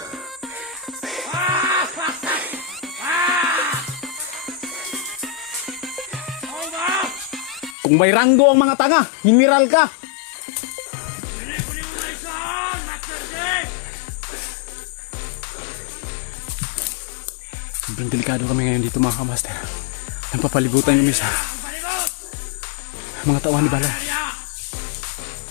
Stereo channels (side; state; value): right; drops out; at 7.8 s